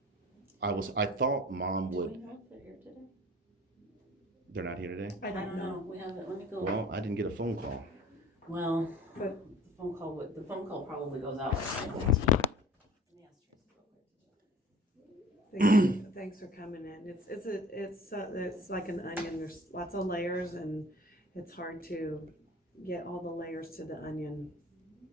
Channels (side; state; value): both; normal; correlation 0.46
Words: I thought mom Do would. we know if they're here today? They're not here today. I don't know. We haven't, let me go. Well, I didn't get a phone call. Well, But- the phone call probably goes out like 9:15. Thanks for coming in. It's like an onion. There's lots of layers, and it's hard to get all the layers to the onion.